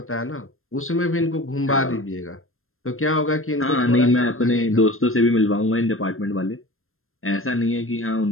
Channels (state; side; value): late; right; 0.61 ms